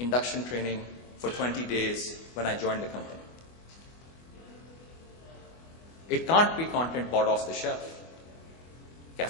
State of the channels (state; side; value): late; right; 25 ms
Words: training for 20 days when I joined the company. It can't be content bought off the shelf.